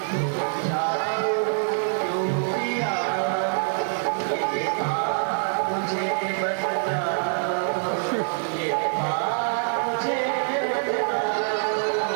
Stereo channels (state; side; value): silent; left; digital silence